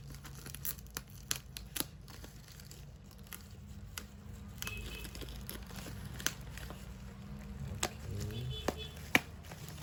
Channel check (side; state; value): both; identical; correlation 1.00